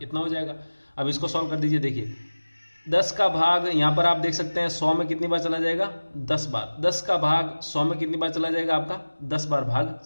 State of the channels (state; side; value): inverted; both; correlation -1.00